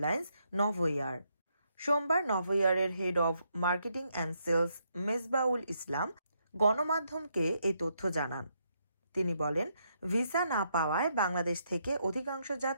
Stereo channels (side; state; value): both; inverted; correlation -0.77